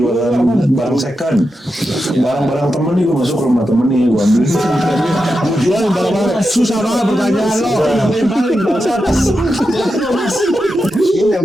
barang second. Barang-barang temen nih, gue masuk ke rumah temen nih, gue ambil. Jualan barang-barang susah banget pertanyaan lo. Paling bangsat. ini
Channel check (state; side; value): normal; both; correlation 0.89